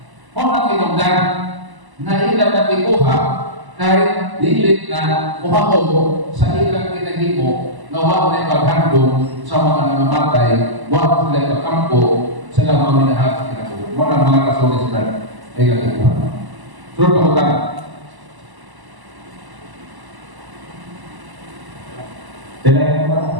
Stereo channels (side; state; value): left; late; 1.0 ms